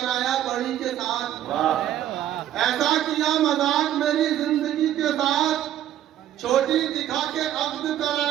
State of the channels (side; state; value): left; quieter; 11.7 dB